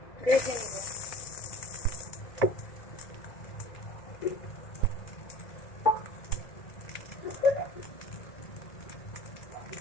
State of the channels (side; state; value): right; late; 1.9 ms